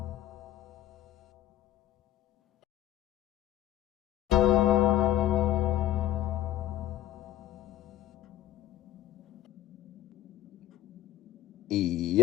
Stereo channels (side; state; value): right; quieter; 13.4 dB